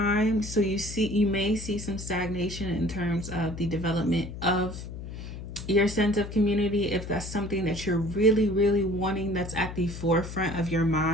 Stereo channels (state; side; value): noise; left; hum, 9 dB below the sound